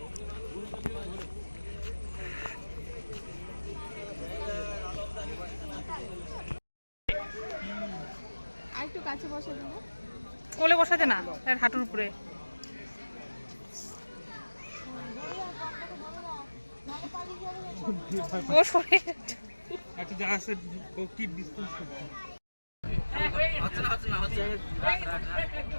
একটু কাছে বসে দেবো, কোলে বসাতে না, হাঁটুর উপরে। ও সরে একটা জায়গা আছে কি ডিসটেন্স হচ্ছে না হচ্ছে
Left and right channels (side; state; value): both; inverted; correlation -1.00